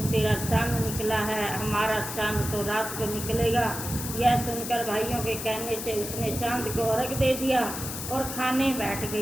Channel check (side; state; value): left; noise; hiss, 7 dB below the sound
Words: तेरा चांद निकला है, हमारा चांद तो रात को निकलेगा। यह सुनकर भाइयों के कहने से उसने चांद को अर्घ दे दिया और खाने बैठ